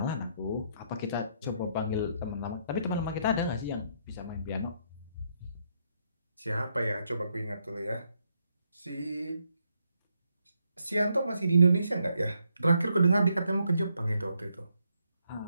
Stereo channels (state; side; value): inverted; both; correlation -0.75